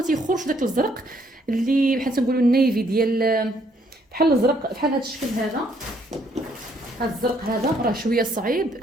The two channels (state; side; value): normal; both; correlation 0.68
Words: تيخرجش داك الزرق اللي بحال تنقولوا النيفي ديال بحال الزرق، بحال هذا الشكل هذا. هذا الزرق هذا راه شويه صعيب